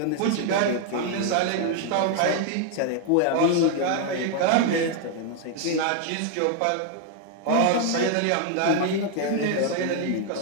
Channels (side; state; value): both; different; correlation 0.01